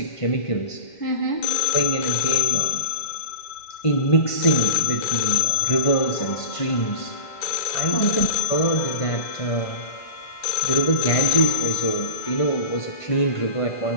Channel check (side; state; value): right; late; 1.5 ms